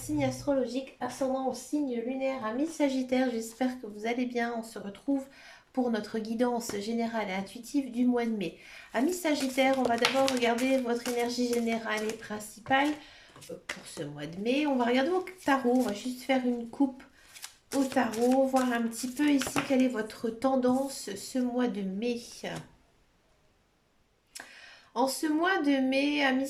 astrologique, ascendant au signe lunaire, amis Sagittaires, j'espère que vous allez bien. On se retrouve pour notre guidance générale et intuitive du mois de mai. Amis Sagittaires, on va d'abord regarder votre énergie générale et principale pour ce mois de mai. On va regarder au tarot, on va juste faire une coupe au tarot, voir un petit peu ici quelle est votre tendance ce mois de mai. En ce mois de mai, amis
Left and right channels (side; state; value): both; identical; correlation 1.00